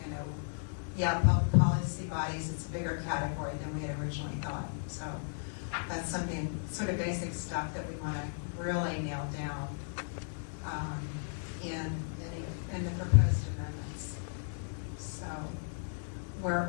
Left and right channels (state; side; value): silent; right; digital silence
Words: policy bodies, it's a bigger category than we had originally thought. So that's something, sort of basic stuff that we want to really nail down in the proposed amendments. So